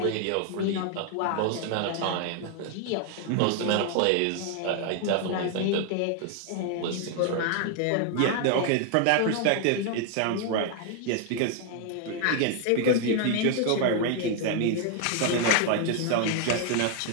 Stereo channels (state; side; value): different; both; correlation 0.00